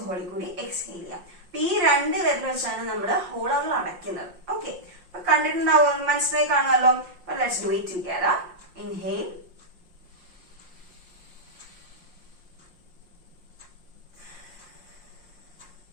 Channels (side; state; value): left; late; 5.6 ms